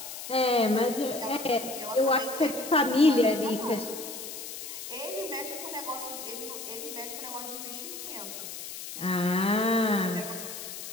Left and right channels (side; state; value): left; noise; hiss, 9 dB below the sound